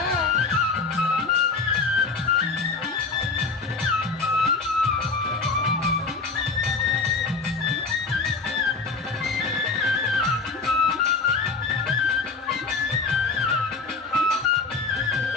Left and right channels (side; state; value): right; quieter; 4.1 dB